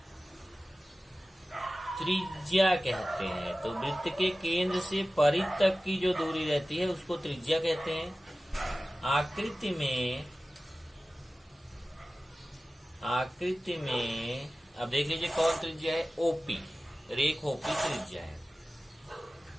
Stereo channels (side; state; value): both; normal; correlation 0.96